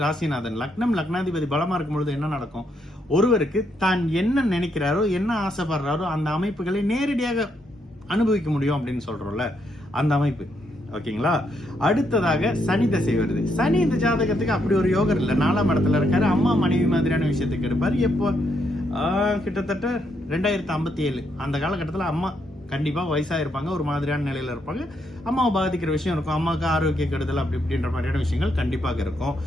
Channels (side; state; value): both; normal; correlation 0.77